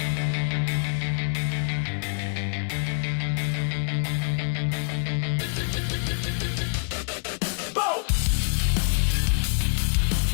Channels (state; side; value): silent; right; digital silence